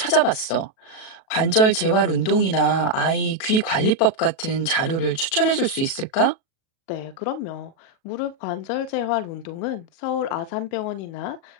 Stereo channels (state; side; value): late; right; 37 ms